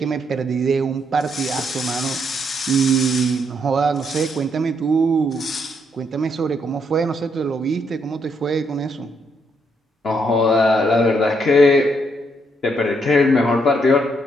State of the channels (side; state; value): both; normal; correlation 0.75